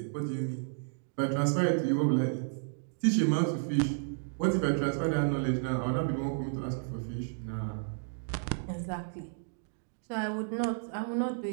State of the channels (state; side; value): silent; left; digital silence